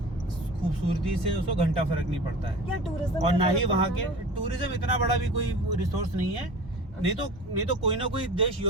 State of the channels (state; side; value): normal; both; correlation 0.37